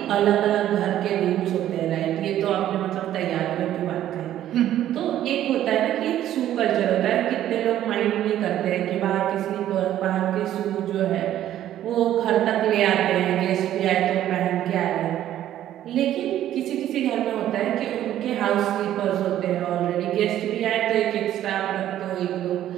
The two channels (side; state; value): left; quieter; 12.2 dB